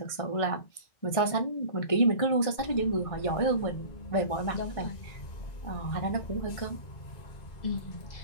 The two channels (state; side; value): late; right; 1.6 ms